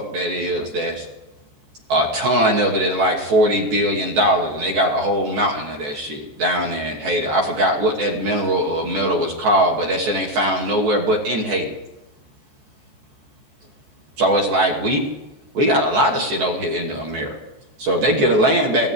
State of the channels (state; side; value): late; left; 14 ms